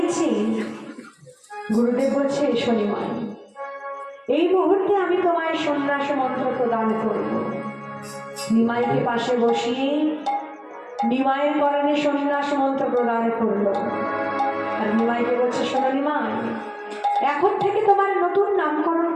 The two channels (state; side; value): identical; both; correlation 1.00